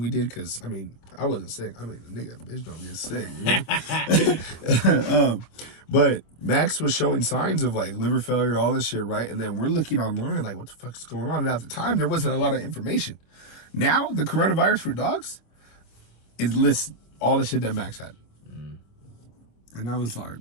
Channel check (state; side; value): late; right; 26 ms